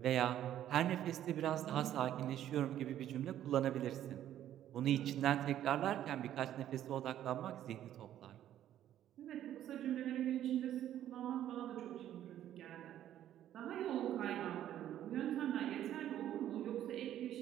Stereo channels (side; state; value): left; quieter; 11.7 dB